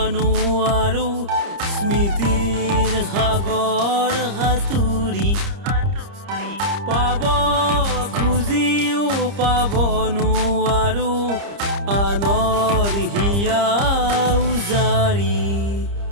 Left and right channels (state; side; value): late; left; 30 ms